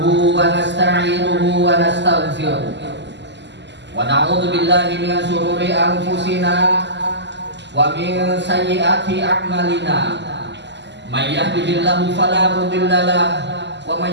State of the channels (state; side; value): late; left; 0.51 ms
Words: wa nasta'inuhu wa nastaghfiruh wa na'udzu billahi min shururi anfusina wa min sayyiati a'malina may yahdihillahu fala mudilla lahu wa